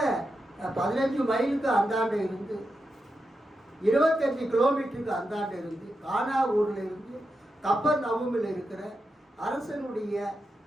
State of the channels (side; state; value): both; normal; correlation 0.87